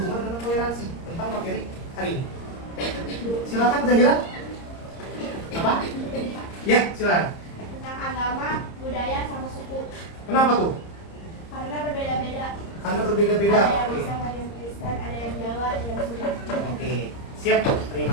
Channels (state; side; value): late; right; 30 ms